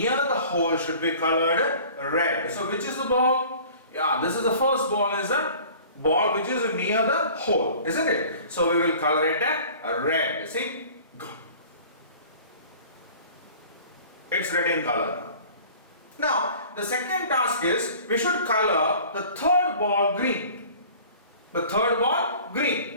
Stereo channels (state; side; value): inverted; both; correlation -0.46